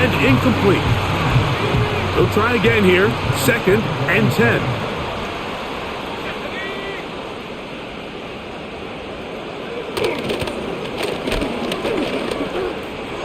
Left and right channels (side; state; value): both; identical; correlation 1.00